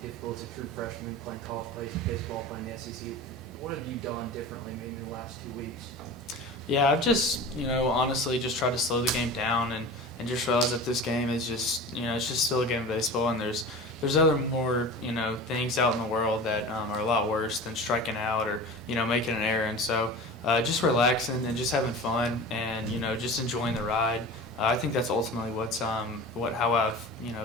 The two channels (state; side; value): normal; both; correlation 0.34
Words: difficult as a true freshman playing college baseball, playing the SEC. What have you done differently maybe in the last 2 weeks? Yeah, I've just, honestly just tried to slow the game down and just realize that this game is just, it's just still a game of baseball, and there's other more, things out in the world that are a lot worse than striking out or, making an error. And so just relaxing and just having fun and, just enjoying the ride. I think that's ultimately how I've